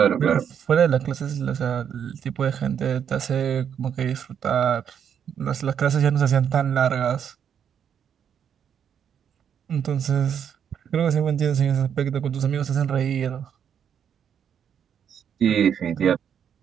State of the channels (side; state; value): left; quieter; 8.3 dB